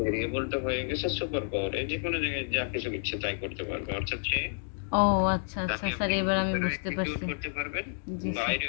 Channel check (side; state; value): right; silent; digital silence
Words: হয়ে গেছে সুপার পাওয়ার, এই যে কোনো জায়গায় যা কিছু ইচ্ছে তাই করতে পারবে, অর্থাৎ সে ও আচ্ছা আচ্ছা তাকে স্যার, আপনি এবার আমি ভিতরেও বুঝতে এক্সিকিউট পারছি। করতে পারবেন, জি স্যার।